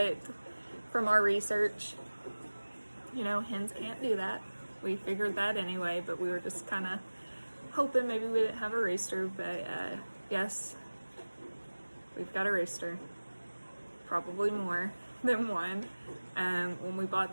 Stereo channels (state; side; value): inverted; both; correlation -1.00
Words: from our research, hens can't do that. We figured that anyway, but we were just kind of hoping maybe we didn't have a rooster. But yes, we've got a rooster, probably more than one. When we